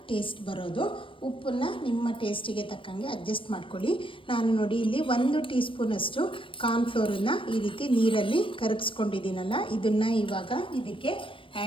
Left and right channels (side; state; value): right; late; 0.25 ms